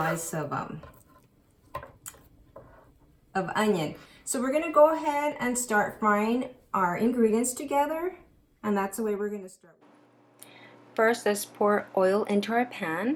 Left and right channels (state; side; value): identical; both; correlation 1.00